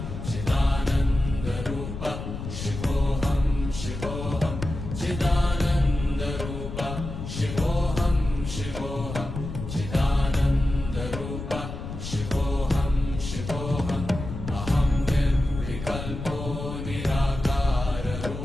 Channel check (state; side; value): noise; left; rumble, 7 dB below the sound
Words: चिदानन्दरूप शिवोऽहं शिवोऽहं चिदानन्दरूप शिवोऽहं शिवोऽहं चिदानन्दरूप शिवोऽहं शिवोऽहम् अहं निर्विकल्पो